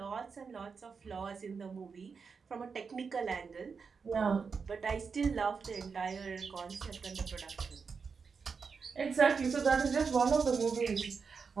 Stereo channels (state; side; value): quieter; left; 5.4 dB